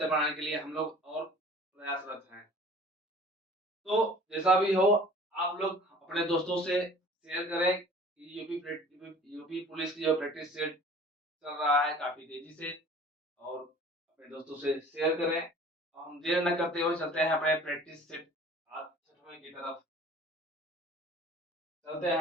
बनाने के लिए हम लोग और प्रयासरत हैं। तो जैसा भी हो, आप लोग अपने दोस्तों से शेयर करें कि यूपी पुलिस की जो प्रैक्टिस सेट चल रहा है काफ़ी तेज़ी से और अपने दोस्तों से शेयर करें। और हम देर न करते हुए चलते हैं अपने प्रैक्टिस सेट आज 6वें की तरफ। चलते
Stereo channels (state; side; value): normal; both; correlation 0.47